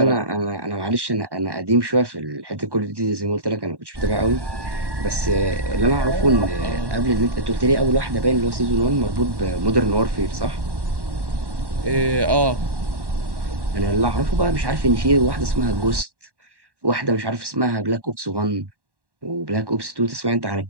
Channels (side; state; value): left; late; 1.1 ms